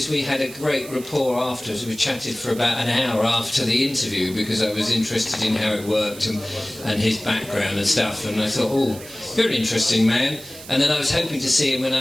we had a great rapport afterwards. We chatted for about an hour after the interview because I was interested in how it worked and his background and stuff. And I thought, oh, you're an interesting man. And then I was hoping to see him when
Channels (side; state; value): right; noise; hiss, 16 dB below the sound